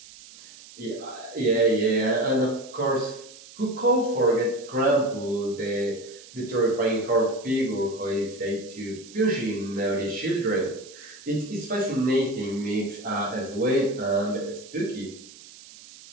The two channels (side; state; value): right; noise; hiss, 19 dB below the sound